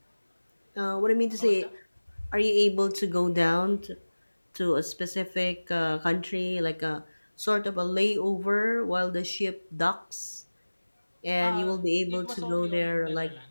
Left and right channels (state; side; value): inverted; both; correlation -1.00